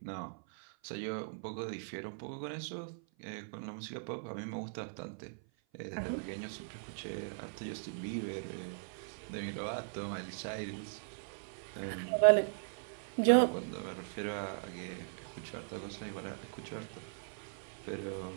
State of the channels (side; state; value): left; silent; 52 dB below the other